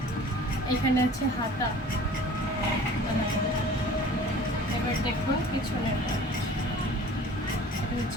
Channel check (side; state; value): both; normal; correlation 0.46